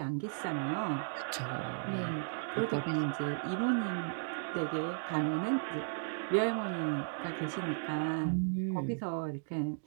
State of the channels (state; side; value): silent; left; digital silence